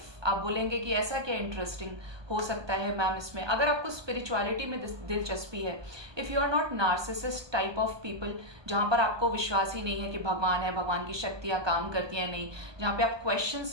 आप बोलेंगे कि ऐसा क्या इंटरेस्टिंग हो सकता है मैम इसमें? अगर आपको स्पिरिचुअलिटी में दिलचस्पी है, if you are not narcissist type of people, जहाँ पर आपको विश्वास ही नहीं है कि भगवान है, भगवान की शक्तियाँ काम करती हैं नहीं, जहाँ पे आप क्वेश्चन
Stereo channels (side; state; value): left; late; 1.2 ms